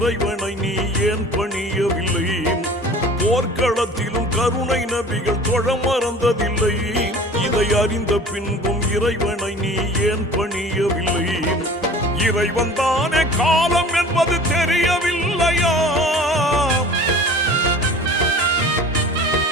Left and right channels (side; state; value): both; normal; correlation 0.42